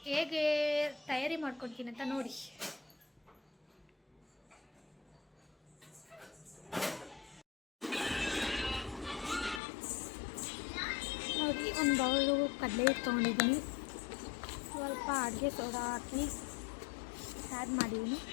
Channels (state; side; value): drops out; right; at 9.6 s